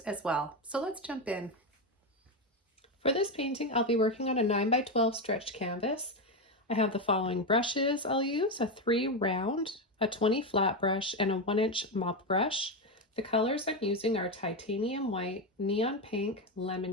as well. So let's jump in. For this painting, I'll be working on a 9x12 stretched canvas. I have the following brushes I'll use: a 3 round, a 20 flat brush, and a 1-inch mop brush. The colors I'm using are titanium white, neon pink,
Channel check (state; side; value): normal; both; correlation 0.11